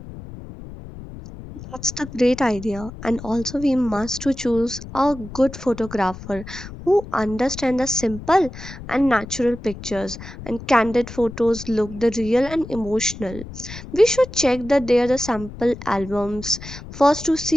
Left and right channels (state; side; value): noise; left; rumble, 13 dB below the sound